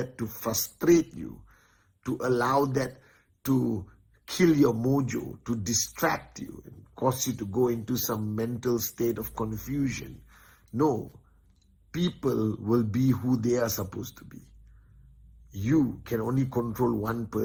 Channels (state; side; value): identical; both; correlation 1.00